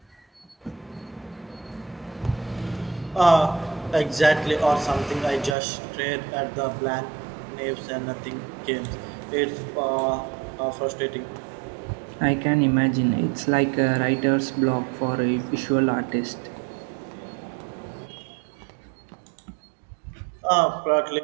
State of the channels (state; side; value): drops out; left; at 5.6 s